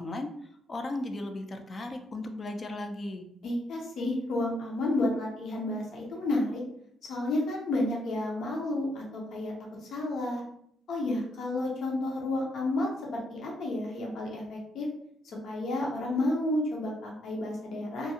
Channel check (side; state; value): both; normal; correlation 0.76